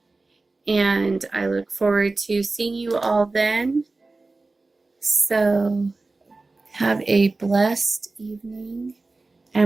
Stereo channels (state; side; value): quieter; left; 3.4 dB